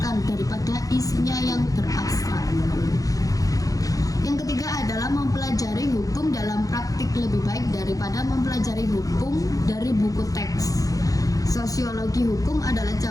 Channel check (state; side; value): late; right; 0.17 ms